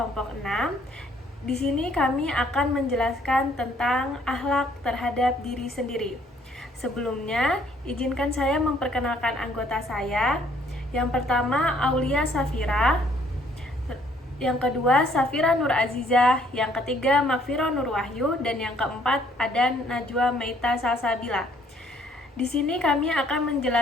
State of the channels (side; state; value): both; normal; correlation 0.63